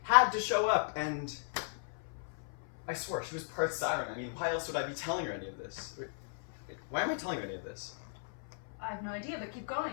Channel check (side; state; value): right; silent; 54 dB below the other